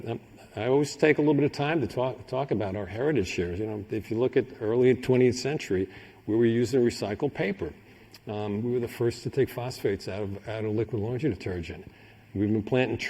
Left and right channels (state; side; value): identical; both; correlation 1.00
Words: I always take a little bit of time to talk about our heritage here. If you look at early 20th century, we were using recycled paper. We were the first to take phosphates out of liquid laundry detergent. We've been planting